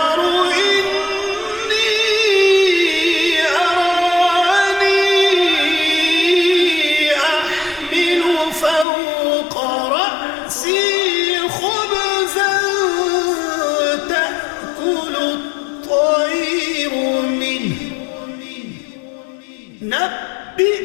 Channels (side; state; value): right; drops out; at 8.8 s